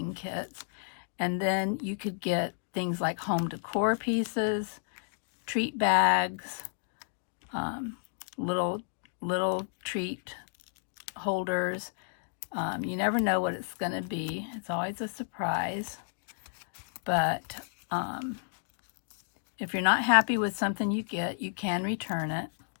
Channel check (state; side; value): silent; right; digital silence